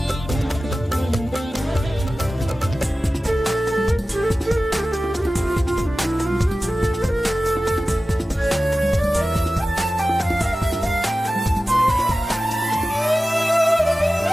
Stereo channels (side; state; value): both; normal; correlation 0.95